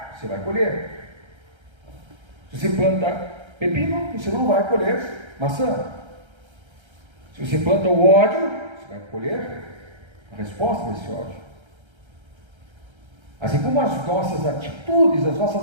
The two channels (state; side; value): late; left; 1.3 ms